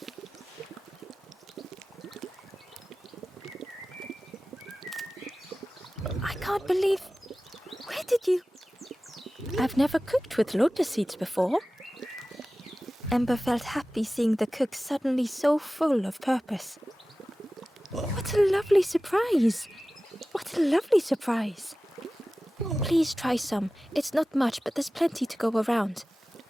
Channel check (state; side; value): normal; both; correlation 0.96